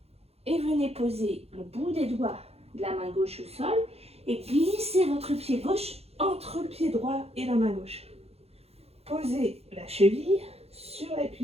Et venez poser le bout des doigts de la main gauche au sol et glissez votre pied gauche entre le pied droit et la main gauche. Posez la cheville sur la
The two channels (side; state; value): left; late; 0.29 ms